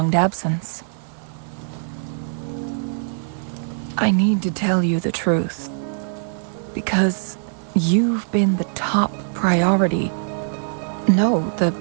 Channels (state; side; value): silent; left; digital silence